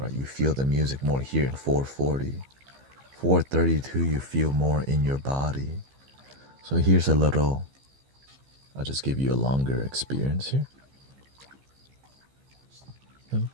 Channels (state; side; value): late; left; 15 ms